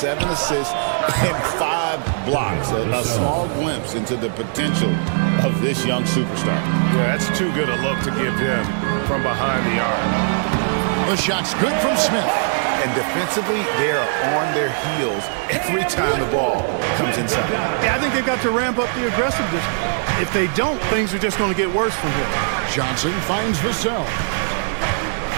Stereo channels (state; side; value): silent; left; 66 dB below the other